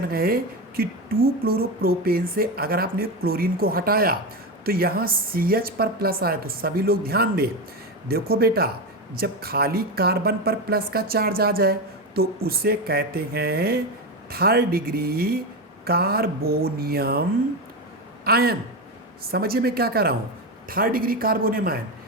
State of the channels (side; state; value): both; normal; correlation 0.16